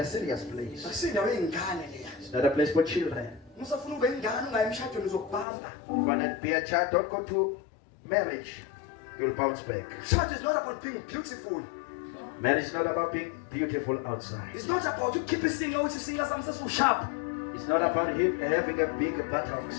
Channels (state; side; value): drops out; right; at 5.5 s